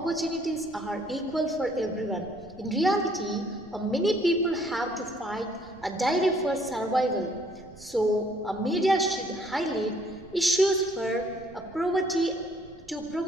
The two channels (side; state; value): right; noise; rumble, 22 dB below the sound